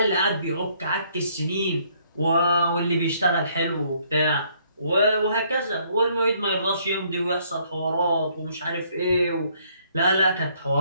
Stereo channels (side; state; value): both; inverted; correlation -0.66